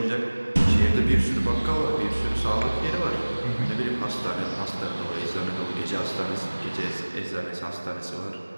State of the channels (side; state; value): both; inverted; correlation -1.00